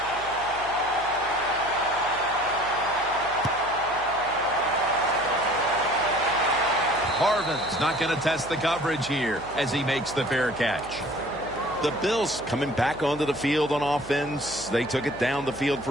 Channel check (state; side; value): noise; right; hum, 19 dB below the sound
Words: Harvin's not going to test the coverage here as he makes the fair catch. The Bills coming back onto the field on offense. They took it down the field